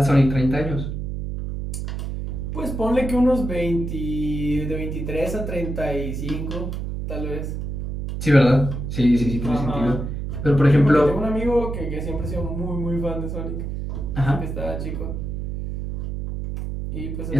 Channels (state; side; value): noise; right; hum, 4 dB below the sound